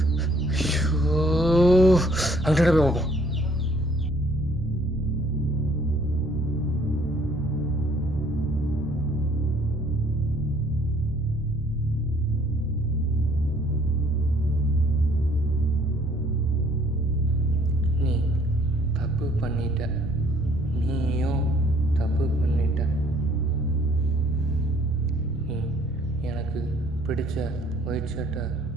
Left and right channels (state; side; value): normal; both; correlation 0.60